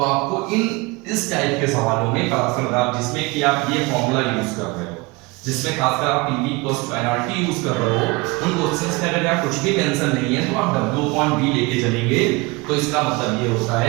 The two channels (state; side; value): quieter; left; 24.9 dB